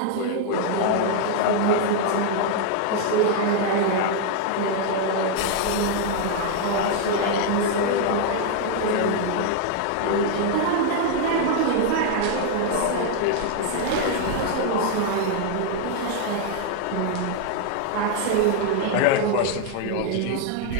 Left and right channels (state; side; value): different; both; correlation 0.00